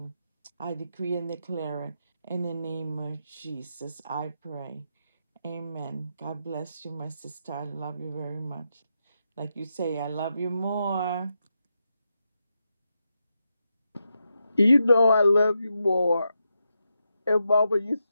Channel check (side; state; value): both; inverted; correlation -0.85